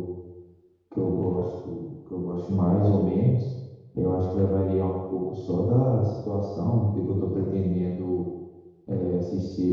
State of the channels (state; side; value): identical; both; correlation 1.00